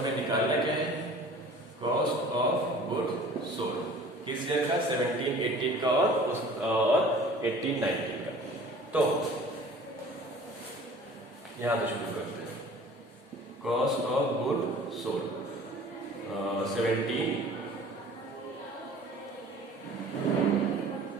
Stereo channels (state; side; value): normal; both; correlation 0.46